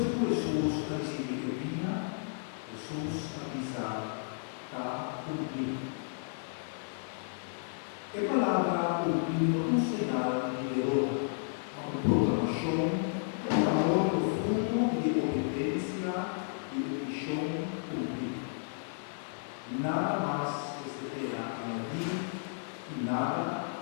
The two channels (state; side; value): silent; right; digital silence